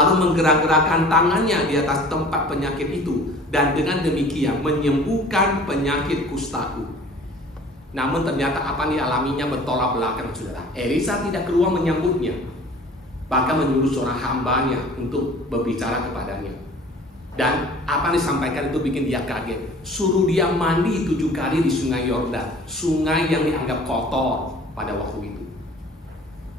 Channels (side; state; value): both; normal; correlation 0.47